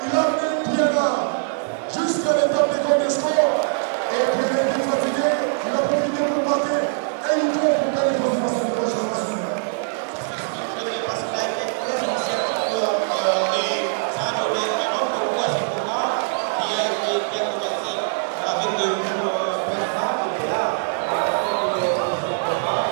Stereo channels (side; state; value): left; silent; digital silence